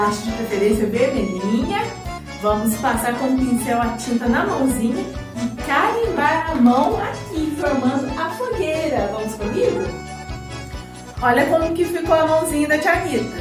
de preferência vermelhinha. Vamos passar com o pincel a tinta na mãozinha e carimbar a mão aqui, formando a fogueira. Vamos comigo? Olha como que ficou a mãozinha da tia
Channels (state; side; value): identical; both; correlation 1.00